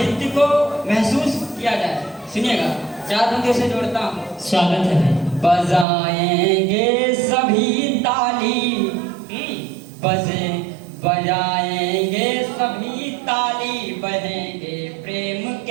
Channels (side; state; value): left; drops out; at 5.9 s